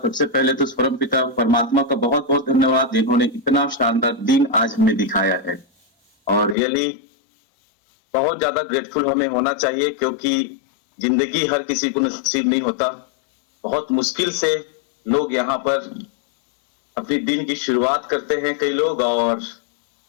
सबसे पहले तो परम पिता परमात्मा का बहुत बहुत धन्यवाद, जिन्होंने इतना शानदार दिन आज हमें दिखाया है। और रियली बहुत ज्यादा ग्रेटफुल हमें होना चाहिए, क्योंकि जिंदगी हर किसी को नसीब नहीं होता। बहुत मुश्किल से लोग यहाँ पर अपनी दिन की शुरुआत करते हैं कई लोग, और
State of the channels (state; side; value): drops out; right; at 6.6 s